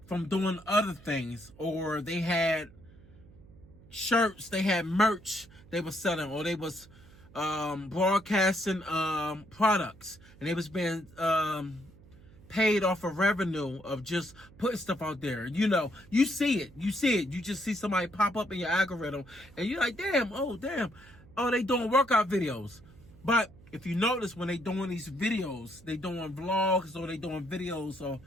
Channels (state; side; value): noise; right; hum, 23 dB below the sound